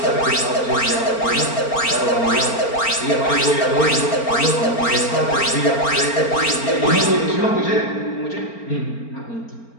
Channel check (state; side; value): late; right; 4.4 ms